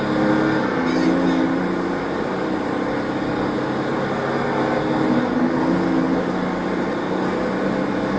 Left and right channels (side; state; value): both; identical; correlation 1.00